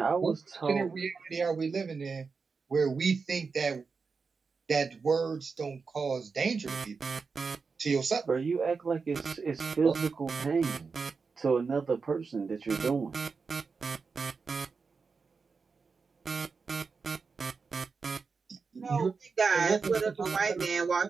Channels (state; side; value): quieter; left; 4.9 dB